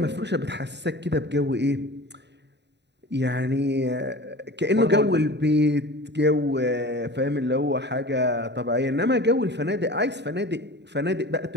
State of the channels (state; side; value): late; left; 0.50 ms